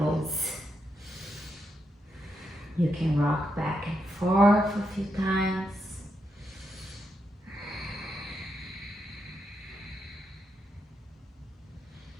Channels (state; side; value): normal; both; correlation 0.82